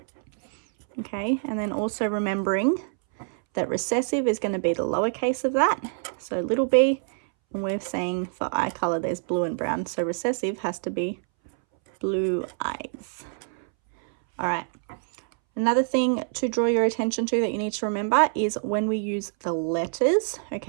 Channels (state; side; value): silent; left; 61 dB below the other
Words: Okay, and then also remembering that recessive is going to be the lowercase of that, so little b, and we're saying for eye color there's blue and brown, so recessive has to be blue eyes. All right, another thing to draw your attention to that you need to remember is when we use the letters,